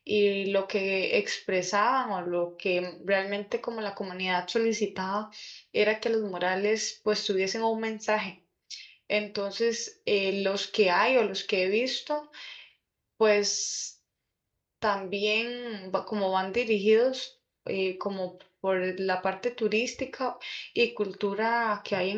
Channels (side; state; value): both; identical; correlation 1.00